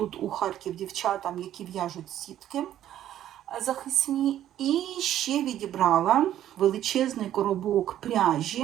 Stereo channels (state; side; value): quieter; left; 11.8 dB